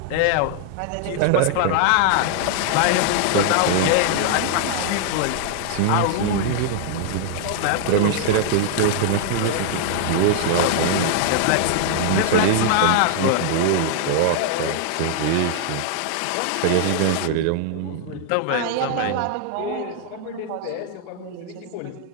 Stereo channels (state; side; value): different; both; correlation -0.01